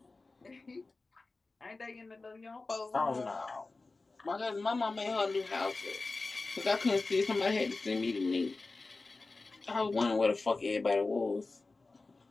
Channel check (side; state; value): right; quieter; 3.5 dB